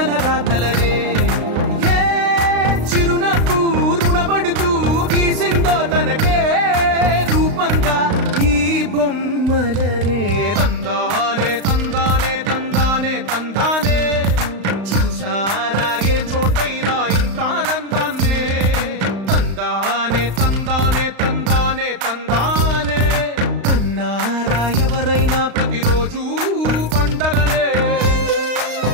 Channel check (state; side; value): late; left; 35 ms